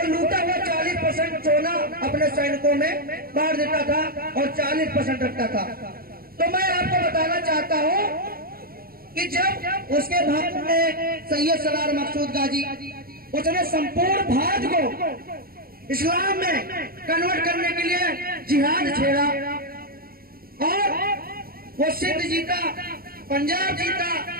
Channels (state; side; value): late; left; 0.43 ms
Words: लूटा हुआ 40% सोना अपने सैनिकों में बांट देता था और 40% रखता था। तो मैं आपको बताना चाहता हूँ कि जब उसके भारत में सैयद सलार मकसूद गाजी, उसने संपूर्ण भारत को इस्लाम में कन्वर्ट करने के लिए जिहाद छेड़ा और वो सिंध जीता, पंजाब जीता,